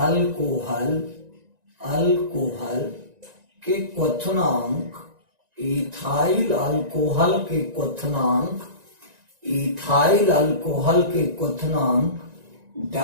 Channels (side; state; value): left; late; 1.9 ms